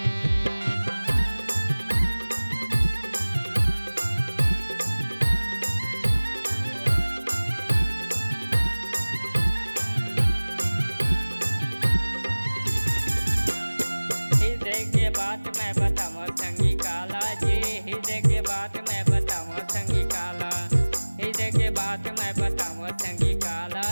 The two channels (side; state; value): both; inverted; correlation -1.00